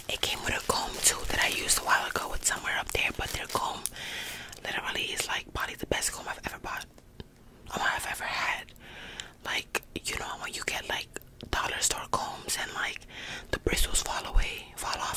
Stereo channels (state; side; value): identical; both; correlation 1.00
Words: It came with a comb too that I used a while ago with somewhere up there, but their comb literally is like probably the best comb I've ever bought. I've ever had. Like, you know when you get like dollar store combs and like the bristles fall